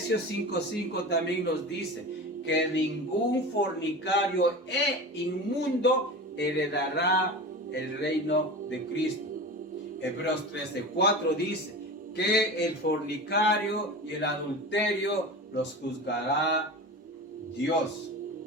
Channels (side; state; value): both; normal; correlation 0.31